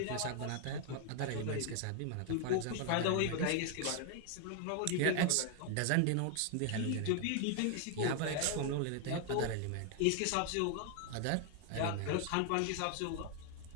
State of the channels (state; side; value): different; both; correlation 0.00